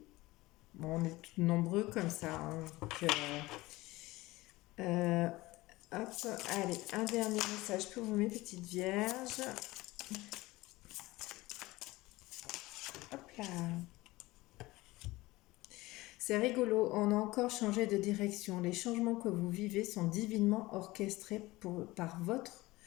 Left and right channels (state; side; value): quieter; right; 19.7 dB